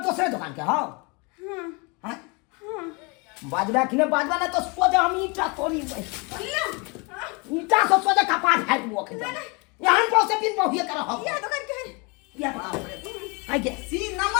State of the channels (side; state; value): right; quieter; 30.1 dB